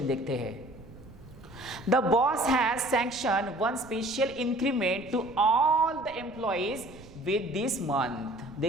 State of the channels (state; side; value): noise; right; rumble, 19 dB below the sound